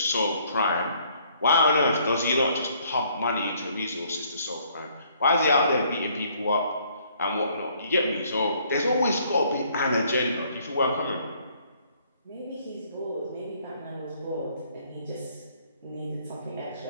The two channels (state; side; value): inverted; both; correlation -0.64